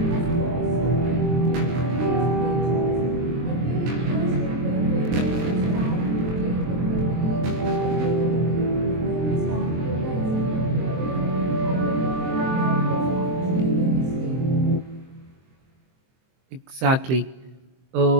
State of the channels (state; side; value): late; left; 23 ms